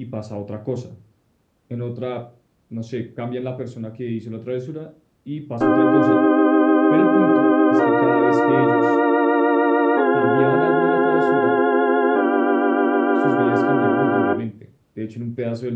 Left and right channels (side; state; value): both; identical; correlation 1.00